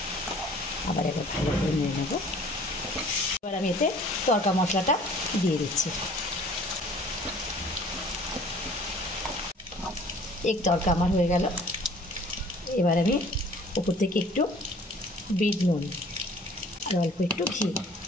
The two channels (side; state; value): both; normal; correlation 0.52